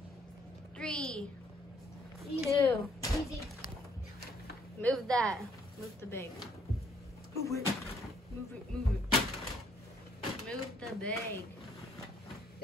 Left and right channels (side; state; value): both; normal; correlation 0.65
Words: 3, 2. Easy. Move that. Move the bag. Move it. Move it. Move it. Move the bag.